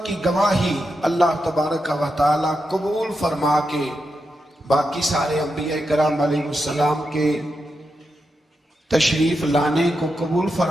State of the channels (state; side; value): normal; both; correlation 0.87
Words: کی گواہی اللہ تبارک و تعالیٰ قبول فرما کے باقی سارے انبیاء کرام علیہ السلام کے تشریف لانے کو قبول